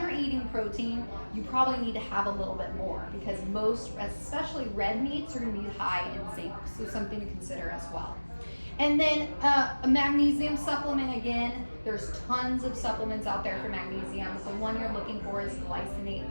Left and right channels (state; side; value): inverted; both; correlation -1.00